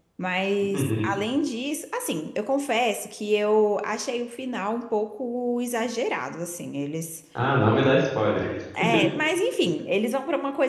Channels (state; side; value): identical; both; correlation 1.00